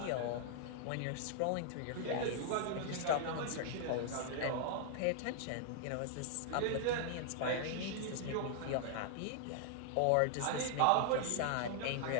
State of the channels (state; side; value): different; both; correlation 0.00